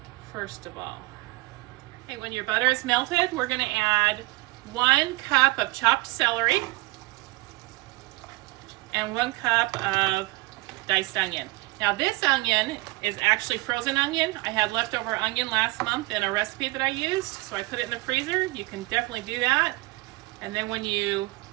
first of all. Okay, when your butter is melted, we're going to add 1 cup of chopped celery and 1 cup of diced onion. Now this onion is actually frozen onion. I had leftover onion last month in a recipe that I used, so I put it in the freezer. You can definitely do that. And then when you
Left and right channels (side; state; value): left; quieter; 22.8 dB